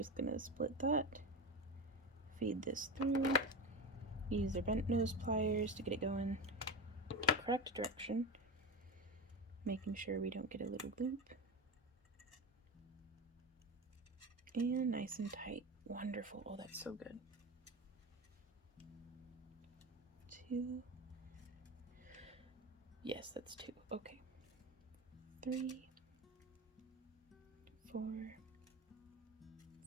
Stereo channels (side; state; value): both; normal; correlation 0.22